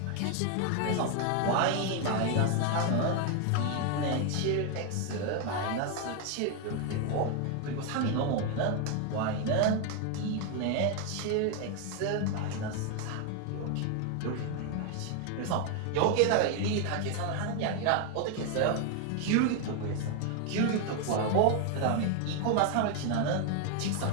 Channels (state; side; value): different; both; correlation 0.01